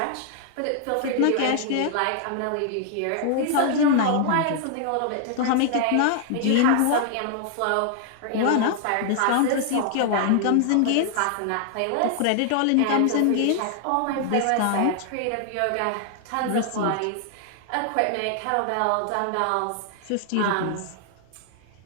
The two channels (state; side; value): different; both; correlation 0.00